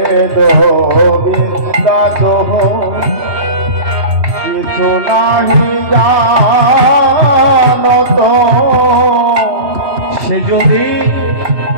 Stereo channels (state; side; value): late; left; 2.8 ms